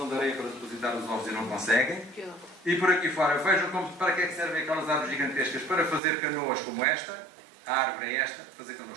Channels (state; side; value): drops out; left; at 6.0 s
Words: de areia para depositar os ovos e não conseguem. E por aqui fora, vejam para que é que servem aquelas árvores gigantescas, para fazer canoas como esta, a árvore é esta, fazer